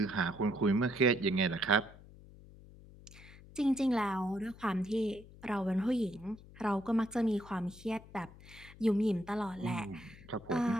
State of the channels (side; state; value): left; noise; hum, 20 dB below the sound